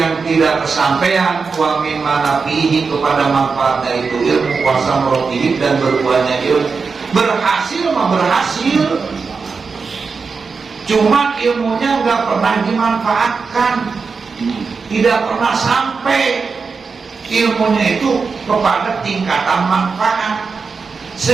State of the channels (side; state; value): left; quieter; 4.9 dB